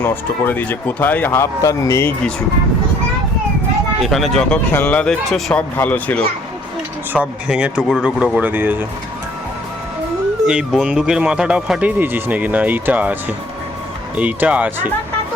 নষ্ট করে দিয়েছে, কোথায় হাফ তার নেই কিছু। এখানে যত খেলনা দেখছো সব ভালো ছিল, সব ভেঙে টুকরো টুকরো করে দিয়েছে। এই বন্দুকের মাথাটাও ফাটিয়ে দিয়েছিস নাকি? না এইটা আছে, এইটা আছে।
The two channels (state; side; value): normal; both; correlation 0.60